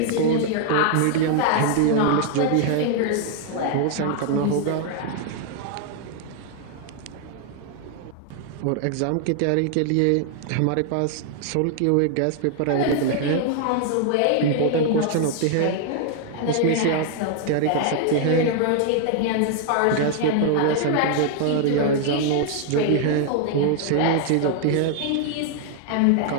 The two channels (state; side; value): different; both; correlation 0.00